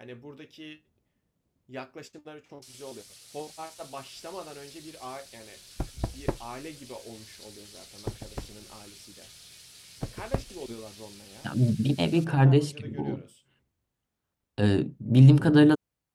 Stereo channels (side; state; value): both; identical; correlation 1.00